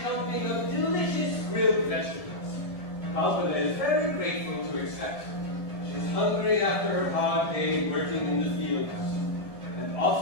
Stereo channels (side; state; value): right; late; 1.7 ms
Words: of delicious grilled vegetables. Kalpana is very grateful to accept. She's hungry after her hard day working in the fields. And